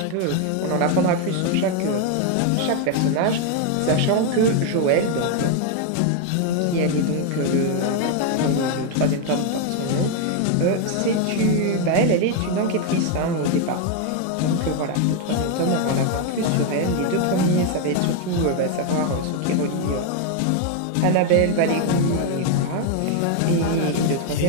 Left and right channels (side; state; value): both; different; correlation 0.01